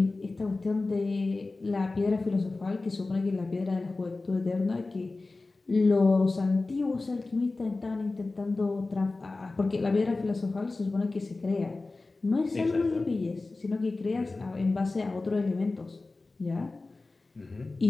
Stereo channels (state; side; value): quieter; right; 3.4 dB